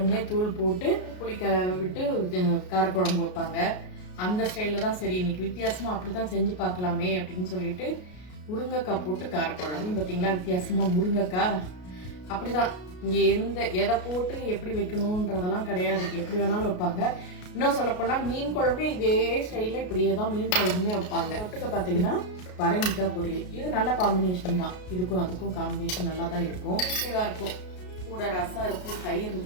தூள் போட்டு புளிக்க விட்டு காரக்குழம்பு வைப்பாங்க. அந்த ஸ்டைலில் தான் சரி இன்னைக்கு வித்தியாசமாக அப்படி தான் செஞ்சு பார்க்கலாமே அப்படின்னு சொல்லிட்டு முருங்கைக்காய் போட்டு காரக்குழம்பு. பார்த்தீங்களா வித்தியாசமாக முருங்கைக்காய் அப்படிதான். இங்கே எதை போட்டு எப்படி வைக்கணுன்றதெல்லாம் கிடையாது, எப்படி வேணாலும் வைப்பாங்க. இன்னும் சொல்லப்போனால் மீன் குழம்பு இதே ஸ்டைலில் இப்படியே தான் மீன் குழம்புமே வைப்பாங்க. தொட்டுக்க பார்த்தீங்கன்னா பரங்கிக்காய் பொரியல். இது நல்ல காம்பினேஷன் தான். இதுக்கும் அதுக்கும் காம்பினேஷன் நல்லா தான் இருக்கும், இதாக இருக்கும். கூட ரசம் இருக்குது, தயிர்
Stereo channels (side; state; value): right; late; 33 ms